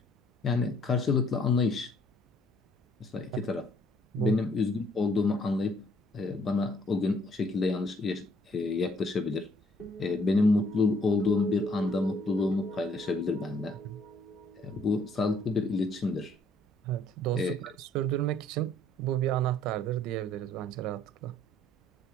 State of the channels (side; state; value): both; normal; correlation 0.63